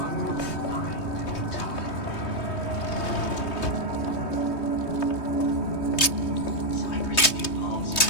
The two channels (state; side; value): late; right; 3.2 ms